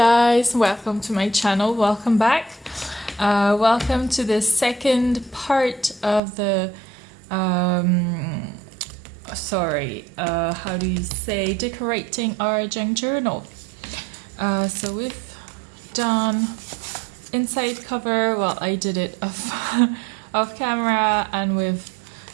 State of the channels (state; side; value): drops out; left; at 6.2 s